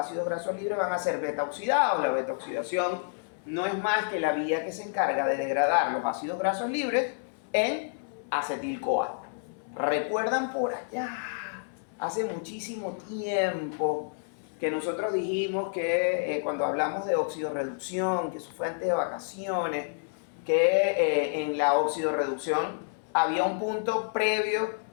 grasos libres van a ser beta oxidados. La beta oxidación no es más que la vía que se encarga de degradar los ácidos grasos libres en acetil-CoA. ¿Recuerdan por allá, hace muchísimo tiempo, que nosotros dijimos que cuando hablamos de oxidorreducción, que eso fue antes de vacaciones, que en la oxidorreducción había un punto previo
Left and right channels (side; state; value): right; silent; 58 dB below the other